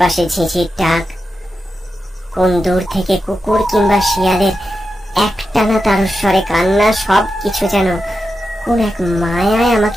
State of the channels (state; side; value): normal; both; correlation 0.89